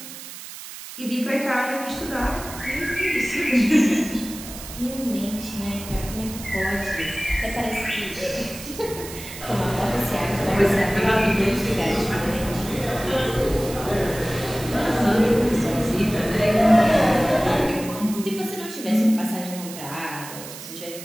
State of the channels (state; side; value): noise; right; hiss, 12 dB below the sound